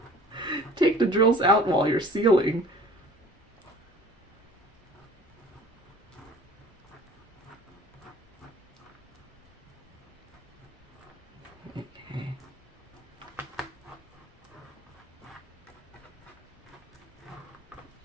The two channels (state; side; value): normal; both; correlation 0.48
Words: take the drills out while you're sealing. Okay.